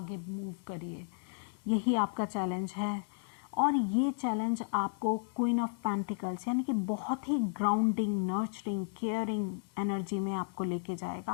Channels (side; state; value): right; silent; digital silence